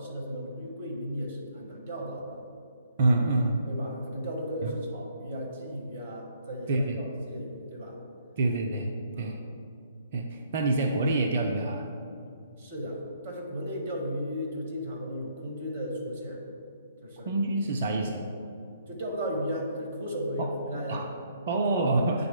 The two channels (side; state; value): both; inverted; correlation -0.68